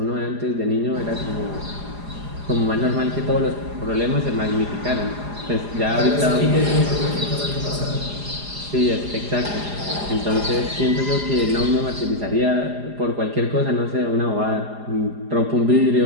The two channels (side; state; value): left; late; 4.9 ms